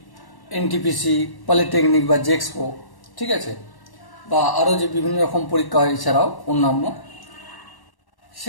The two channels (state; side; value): late; right; 1.1 ms